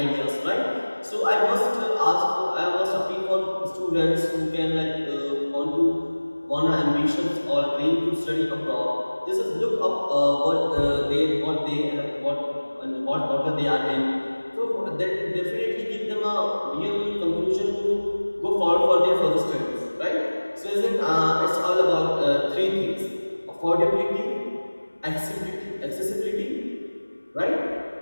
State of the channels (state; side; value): inverted; both; correlation -1.00